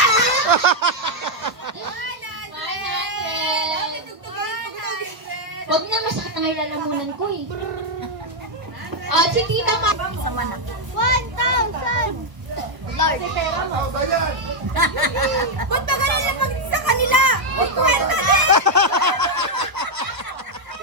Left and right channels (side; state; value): left; late; 1.1 ms